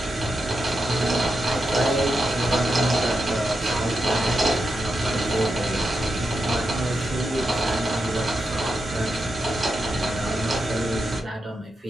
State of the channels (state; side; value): normal; both; correlation 0.87